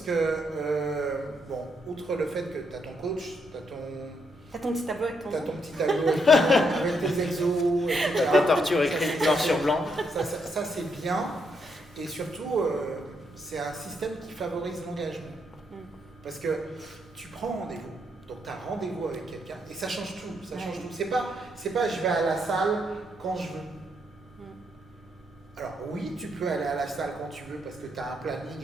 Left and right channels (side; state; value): both; normal; correlation 0.77